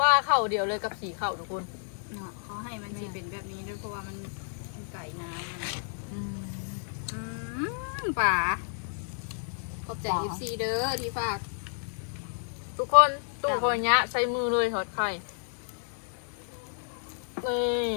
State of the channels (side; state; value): right; silent; digital silence